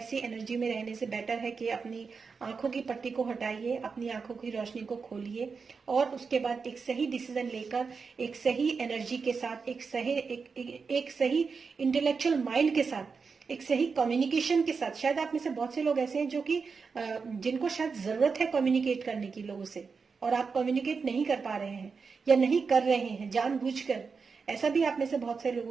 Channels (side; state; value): left; quieter; 5.1 dB